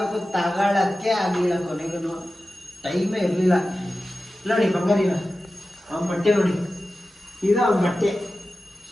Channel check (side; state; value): both; normal; correlation 0.94